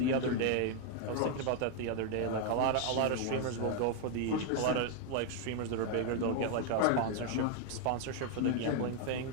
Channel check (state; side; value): different; both; correlation 0.00